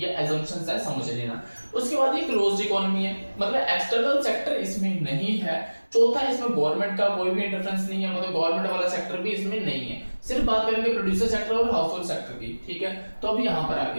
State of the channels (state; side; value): inverted; both; correlation -1.00